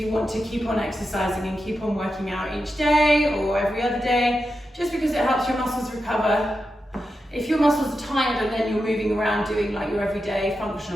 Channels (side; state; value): both; normal; correlation 0.89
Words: you want to keep on exercising and keep on working out each day or every other day, just because it helps your muscles recover. If your muscles are tired and then you're moving around doing like your everyday